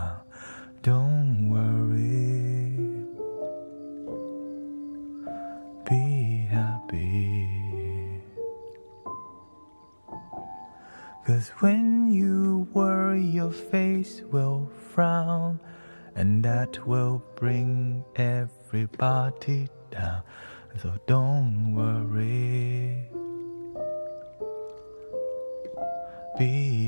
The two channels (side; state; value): both; inverted; correlation -1.00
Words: Don't worry, be happy. 'Cause when you worry, your face will frown, and that will bring everybody down. So don't worry,